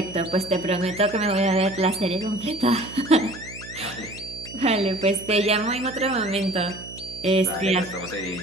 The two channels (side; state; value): right; noise; hum, 16 dB below the sound